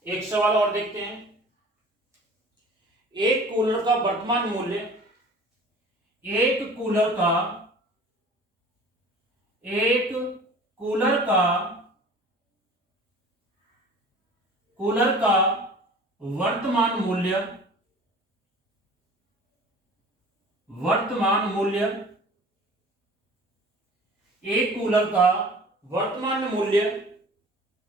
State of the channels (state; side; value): normal; both; correlation 0.44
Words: एक सवाल और देखते हैं। एक कूलर का वर्तमान मूल्य, एक कूलर का वर्तमान मूल्य एक कूलर का वर्तमान मूल्य